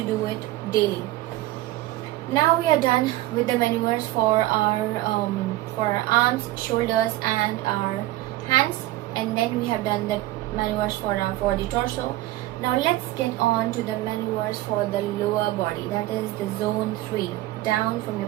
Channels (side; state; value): left; quieter; 16.9 dB